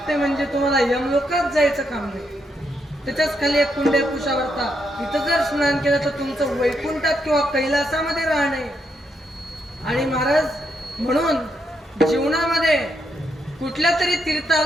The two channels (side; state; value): both; normal; correlation 0.79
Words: म्हणजे तुम्हाला यमलोकात जायचं काम नाही. त्याच्याच खाली एक कुंडे कुशावर्ता, इथं जर स्नान केलं तर तुमचं वैकुंठात किंवा कैलासामध्ये राहणे. आणि महाराज म्हणून जीवनामध्ये कुठल्या तरी